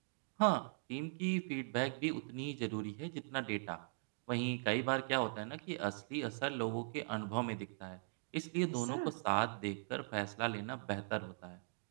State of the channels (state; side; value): silent; left; digital silence